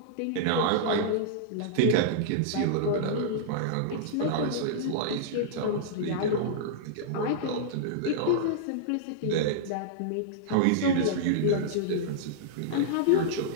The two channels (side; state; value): both; different; correlation -0.02